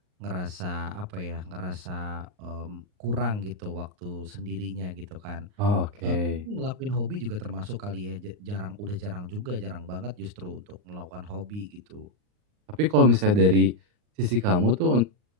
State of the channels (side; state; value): left; late; 39 ms